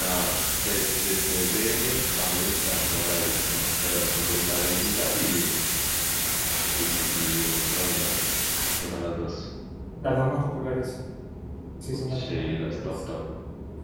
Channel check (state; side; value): identical; both; correlation 1.00